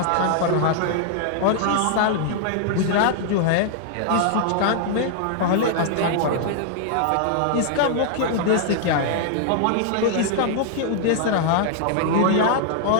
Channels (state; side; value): different; both; correlation -0.01